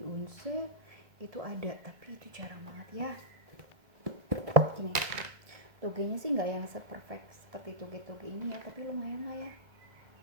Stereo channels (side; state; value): left; late; 1.9 ms